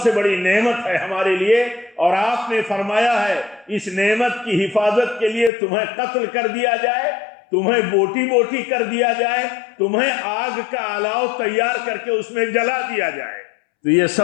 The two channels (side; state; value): right; drops out; at 5.5 s